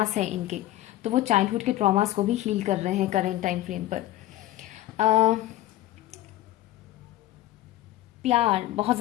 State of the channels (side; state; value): right; quieter; 14.8 dB